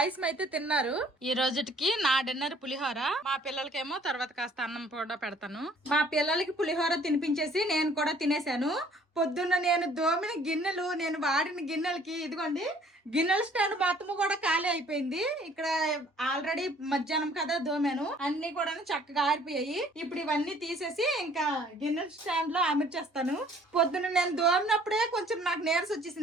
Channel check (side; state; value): both; normal; correlation 0.57